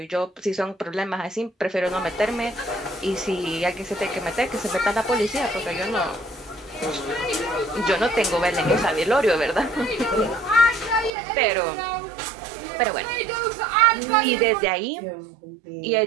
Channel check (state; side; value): drops out; left; at 11.1 s